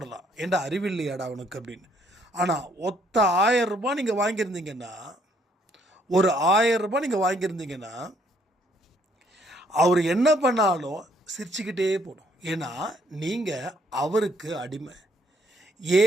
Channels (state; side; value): normal; both; correlation 0.68